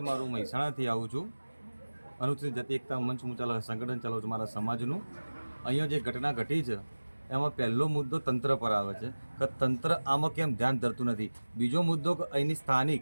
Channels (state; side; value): inverted; both; correlation -1.00